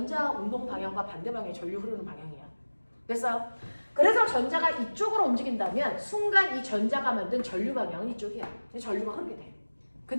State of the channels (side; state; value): both; inverted; correlation -1.00